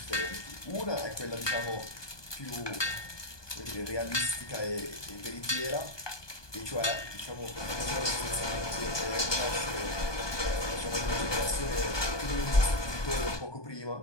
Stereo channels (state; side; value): late; right; 1.2 ms